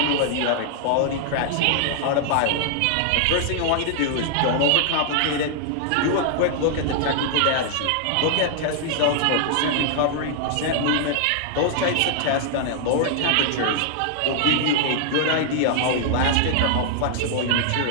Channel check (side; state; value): both; different; correlation 0.00